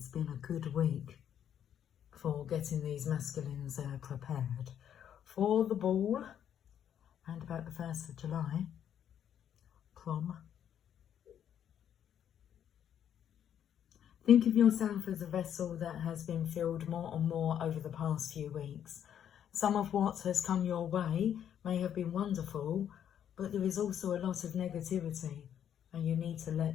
been a good week for getting these masculines prepared for the ball and about the 1st of July, prom. Think of yourself as a vessel that has been filled more and more over the past few weeks. Some of what has come your way may have been wonderful, but there is also a lot of negativity and you need to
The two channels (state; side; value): quieter; right; 9.5 dB